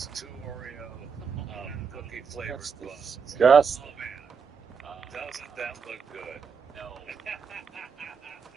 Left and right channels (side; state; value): left; quieter; 6.0 dB